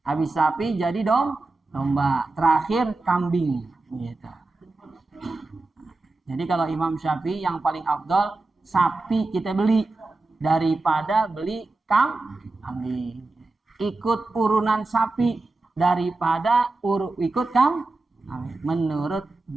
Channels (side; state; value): left; quieter; 3.3 dB